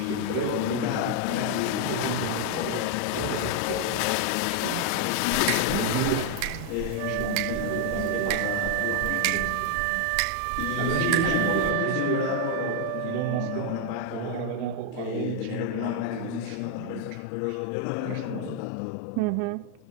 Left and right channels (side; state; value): both; different; correlation 0.00